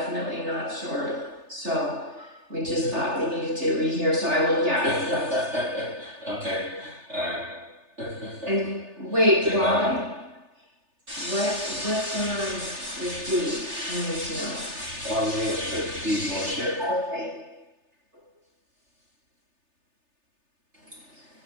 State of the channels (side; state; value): left; late; 3.3 ms